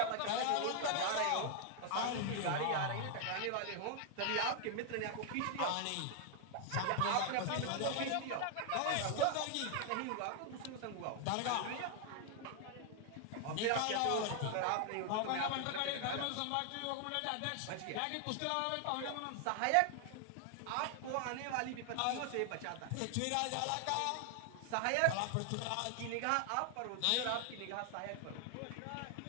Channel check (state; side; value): different; both; correlation 0.00